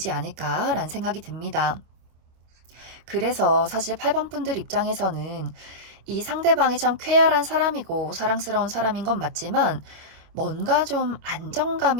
않을까라는 생각이 듭니다. 그래서 사실 8번 분들 입장에서는 이 상대방이 참 쾌활한 사람이고 사랑스러운 사람인 건 맞지만 뭔가 좀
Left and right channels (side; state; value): left; late; 25 ms